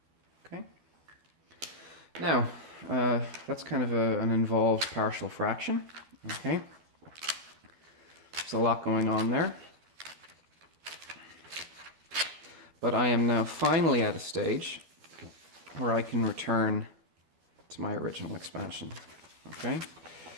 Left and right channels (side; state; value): left; late; 12 ms